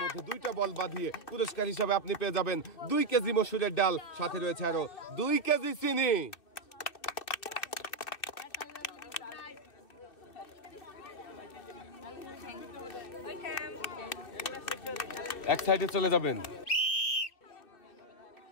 মধ্যে 2টা বল বাঁধিয়ে পুরস্কার হিসাবে আপনি পেয়ে যাবেন 2 কেজি মসুরের ডাল, সাথে রয়েছে আরো 2 কেজি চিনি। এক সাইডে চলে যাবেন।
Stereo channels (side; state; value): right; late; 2.6 ms